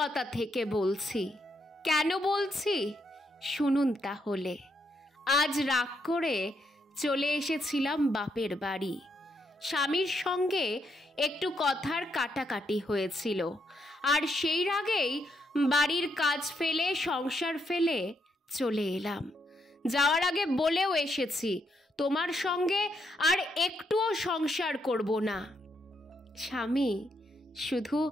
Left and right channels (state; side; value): normal; both; correlation 0.78